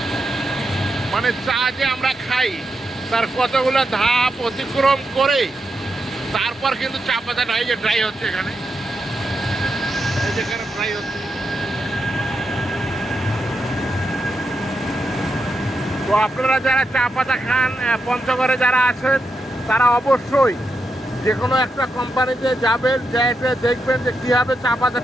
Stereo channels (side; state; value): both; normal; correlation 0.85